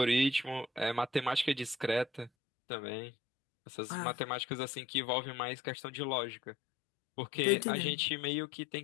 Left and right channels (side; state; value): right; drops out; at 2.3 s